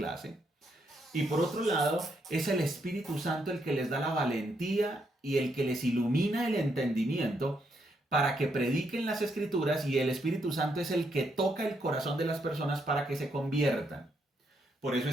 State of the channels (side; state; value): both; normal; correlation 0.77